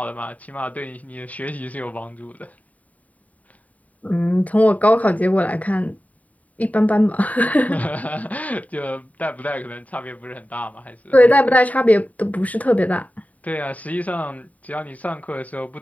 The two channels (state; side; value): late; right; 0.071 ms